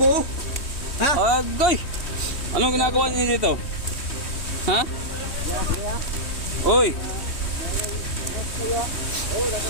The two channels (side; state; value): right; late; 3.2 ms